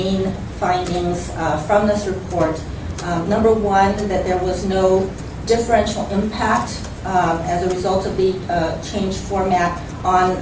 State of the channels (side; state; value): both; identical; correlation 1.00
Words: findings from this report. Number 1, that there was no differential impact as a result of the changed format on